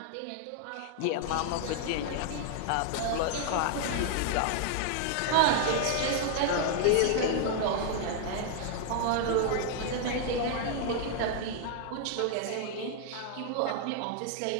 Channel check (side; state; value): both; different; correlation 0.00